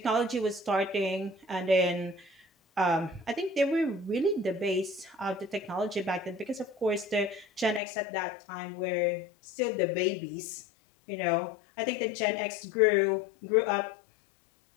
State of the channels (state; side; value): drops out; right; at 7.8 s